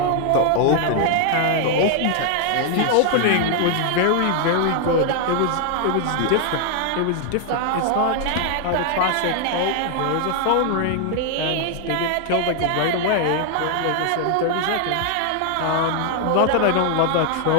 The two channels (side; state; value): both; different; correlation 0.00